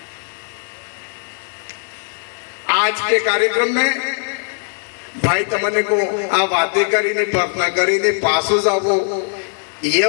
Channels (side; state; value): right; silent; 58 dB below the other